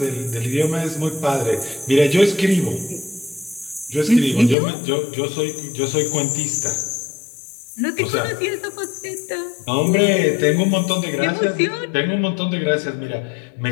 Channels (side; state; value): right; drops out; at 4.5 s